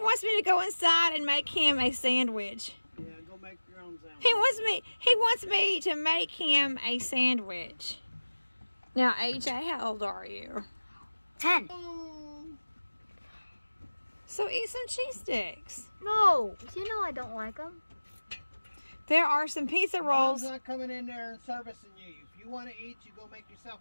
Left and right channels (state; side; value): inverted; both; correlation -1.00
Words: me to go inside and make him a sandwich. Yeah, go make your own sandwich. He wants me to make him a sandwich. Now, AJ, how old are you? 10. So eat some cheese sticks. No, you know I don't like them. There are some pizza rolls. Mom's not coming in there and servicing you. If you want to eat, you go make yourself